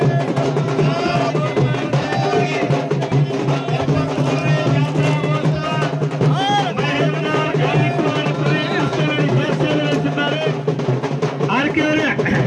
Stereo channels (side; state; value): both; identical; correlation 1.00